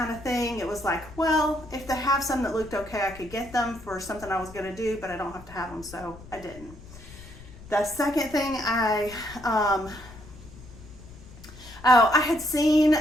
of thing. It was like, well, if they have some that looked okay, I could get them for something I was going to do, but I don't have to have them, so I didn't. The second thing I had seen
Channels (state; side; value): noise; left; rumble, 18 dB below the sound